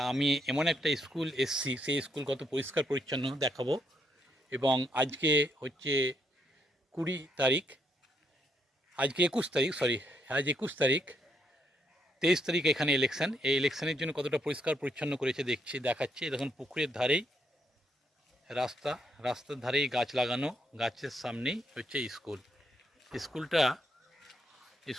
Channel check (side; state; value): both; normal; correlation 0.75